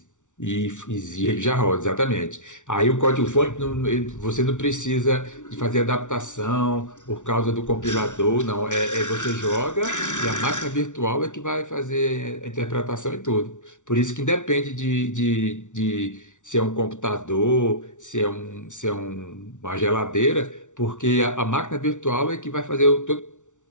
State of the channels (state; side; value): late; right; 0.86 ms